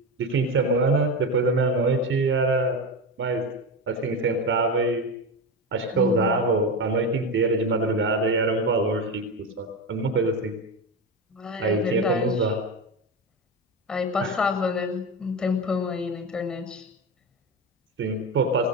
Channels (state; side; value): normal; both; correlation 0.19